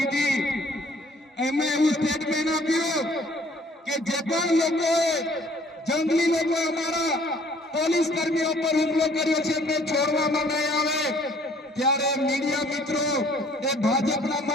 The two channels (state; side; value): normal; both; correlation 0.58